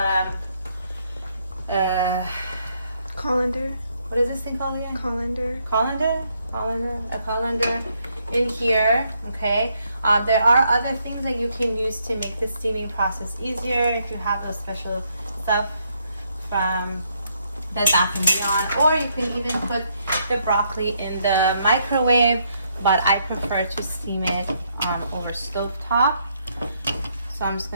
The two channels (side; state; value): both; inverted; correlation -0.74